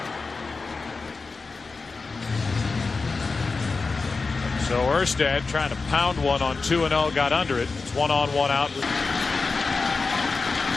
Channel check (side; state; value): right; quieter; 4.2 dB